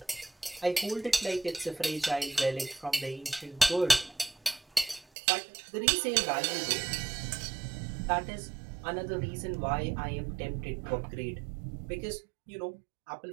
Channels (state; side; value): drops out; left; at 5.1 s